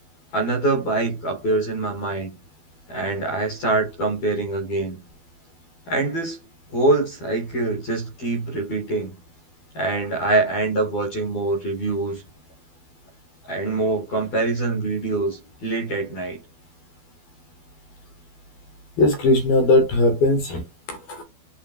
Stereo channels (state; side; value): late; right; 12 ms